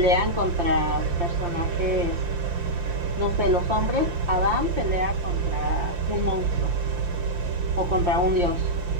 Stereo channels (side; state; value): left; late; 5.8 ms